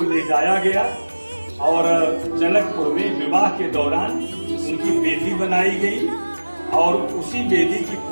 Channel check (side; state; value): both; inverted; correlation -1.00